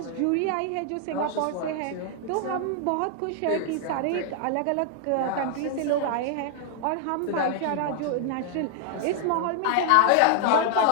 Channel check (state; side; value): different; both; correlation 0.00